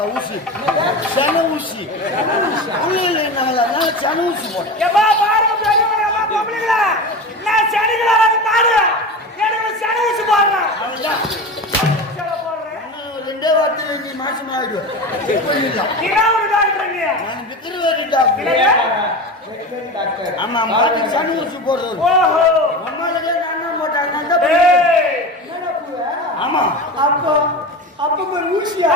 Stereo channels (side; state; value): both; normal; correlation 0.27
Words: ஊசி சன ஊசி சன ஊசி போட்டேன். ரெண்டே வார்த்தை நீ மாசம் ஆயிடுவேன். ஆமா மாட்டுக்கு சன ஊசி போடுறது. ஆமா அப்போ அப்ப பேர் ஊசியா?